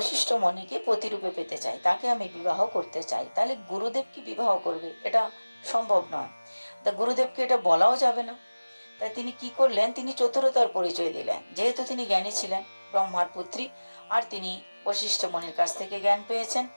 মুনিকে প্রতিরূপে পেতে চাই, তাকে আমি বিবাহ করতে চাই। তাহলে গুরুদেব কি বিবাহ করবে? এটা সম্ভব নয়। তা গুরুদেবকে এটা বলাও যাবে না। তাই তিনি কি করলেন, তিনি চতুরতার পরিচয় দিলেন। যেহেতু তিনি জ্ঞানী ছিলেন, ব্রহ্মার পুত্রী, আর তিনি বশিষ্ঠ মুনির কাছ থেকে জ্ঞান পেয়েছেন,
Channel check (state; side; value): inverted; both; correlation -1.00